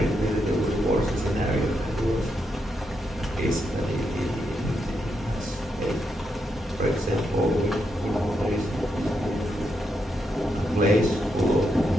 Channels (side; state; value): both; normal; correlation 0.82